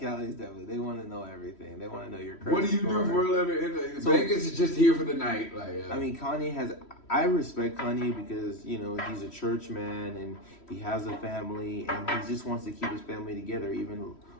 definitely. They want to know everything. They want to know your credit. What do you do for a living? Vegas is just here for the night. Like I mean, Kanye has. I respect Kanye because he's a church man and he has a family and he just wants to keep his family together. Even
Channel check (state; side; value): late; right; 3.1 ms